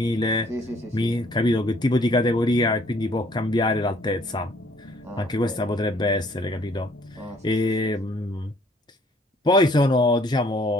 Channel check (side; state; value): both; normal; correlation 0.60